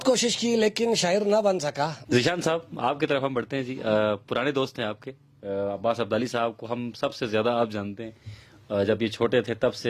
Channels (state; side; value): identical; both; correlation 1.00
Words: کوشش کی لیکن شاعر نہ بن سکا. ذیشان صاحب آپ کی طرف ہم بڑھتے ہیں جی. پرانے دوست ہیں آپ کے، عباس عبدالی صاحب کو ہم سب سے زیادہ آپ جانتے ہیں. جب یہ چھوٹے تھے تب